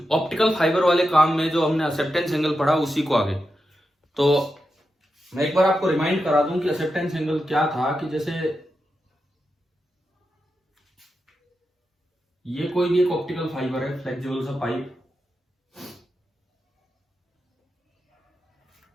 ऑप्टिकल फाइबर वाले काम में। जो हमने एक्सेप्टेंस एंगल पढ़ा उसी को आगे। तो मैं एक बार आपको रिमाइंड करा दूं कि एक्सेप्टेंस एंगल क्या था। कि जैसे ये कोई भी एक ऑप्टिकल फाइबर है, फ्लेक्सिबल सा पाइप,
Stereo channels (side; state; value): both; normal; correlation 0.88